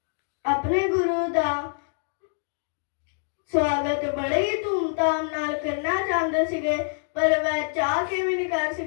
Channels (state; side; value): silent; right; digital silence